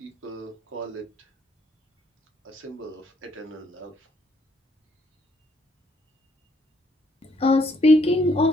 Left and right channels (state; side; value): normal; both; correlation 0.69